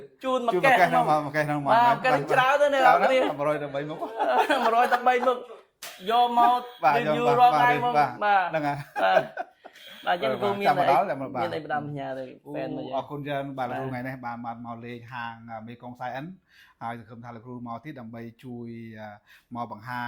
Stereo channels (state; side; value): identical; both; correlation 1.00